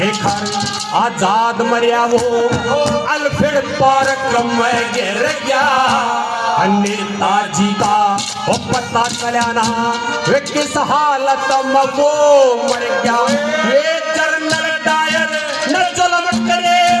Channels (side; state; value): both; identical; correlation 1.00